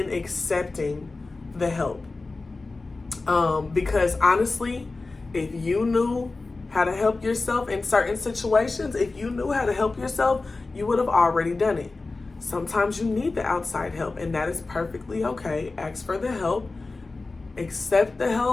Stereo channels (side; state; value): right; quieter; 3.5 dB